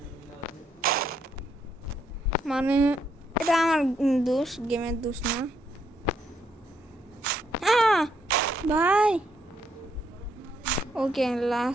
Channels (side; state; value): both; normal; correlation 0.74